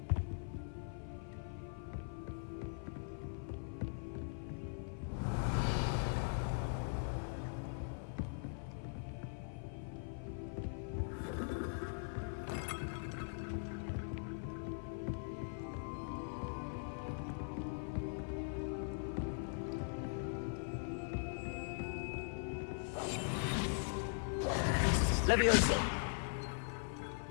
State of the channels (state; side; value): silent; right; 50 dB below the other